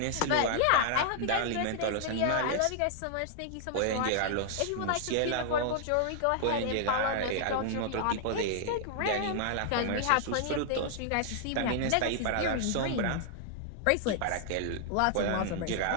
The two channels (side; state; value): both; different; correlation -0.01